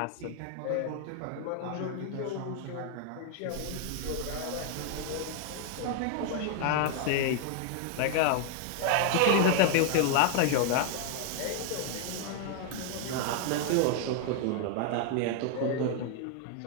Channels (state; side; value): different; both; correlation 0.00